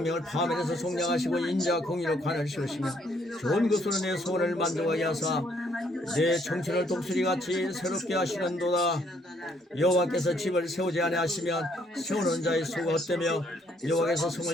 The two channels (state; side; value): normal; both; correlation 0.68